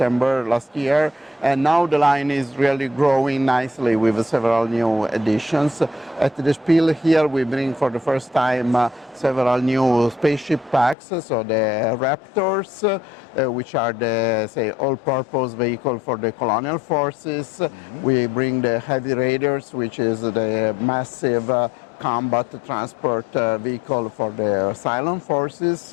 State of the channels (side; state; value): right; drops out; at 11.0 s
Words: last year. And now the line is really growing nicely with several new additions. At the Spiel here, we bring for the first time several new spaceship packs. So the Raptors, which are the, say, all-purpose vehicle for the colonial forces. We bring the Heavy Raiders, which is the massive combat transport vehicle for the Cylon forces.